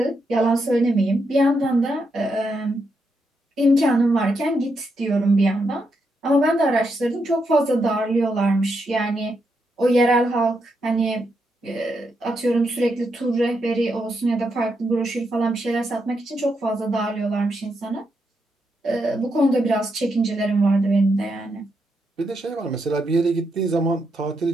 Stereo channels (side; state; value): both; normal; correlation 0.82